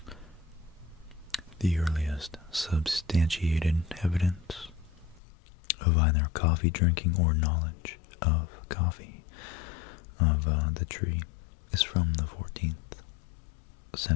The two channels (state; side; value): drops out; right; at 5.2 s